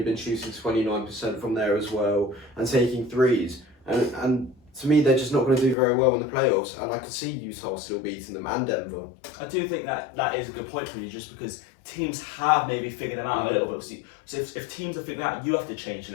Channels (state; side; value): drops out; right; at 5.8 s